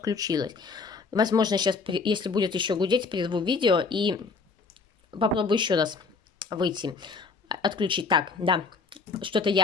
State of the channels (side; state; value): right; quieter; 4.5 dB